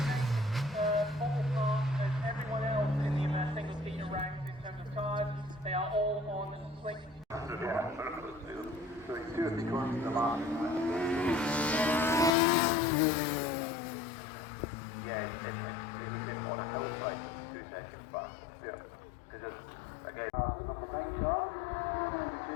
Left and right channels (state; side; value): drops out; right; at 12.3 s